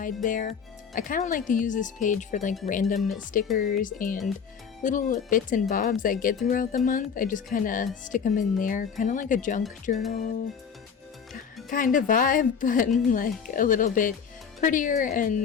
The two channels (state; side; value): quieter; right; 6.8 dB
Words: there. I kind of like to use this page for like random stickers and little bits and bobs I get throughout the month. I just kind of stick them in there, kind of like a junk journal kind of vibe, but like a little bit prettier